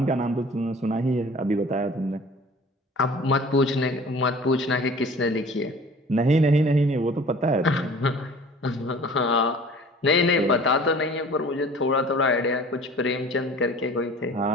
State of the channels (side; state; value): both; normal; correlation 0.46